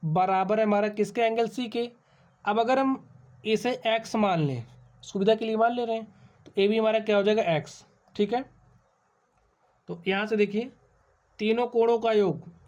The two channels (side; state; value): both; identical; correlation 1.00